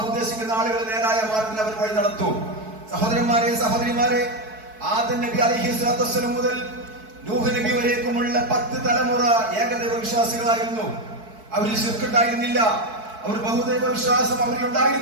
ഉദ്ദേശിക്കുന്ന ആളുകൾ നേരായ മാർഗത്തിൽ അവർ വഴി നടത്തും. സഹോദരന്മാരെ, സഹോദരിമാരെ, ആദം നബി അലൈഹിസ്സലാത്തു വസ്സലാം മുതൽ നൂഹ് നബി വരേക്കുമുള്ള 10 തലമുറ ഏകദൈവ വിശ്വാസികളായിരുന്നു. അവരിൽ ശിർക്ക് ഉണ്ടായിരുന്നില്ല, അവർ ബഹുദൈവ വിശ്വാസം അവരിൽ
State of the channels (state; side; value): late; left; 4.6 ms